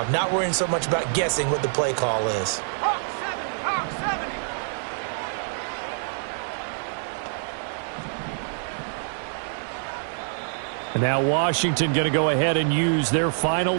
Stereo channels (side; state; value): left; silent; digital silence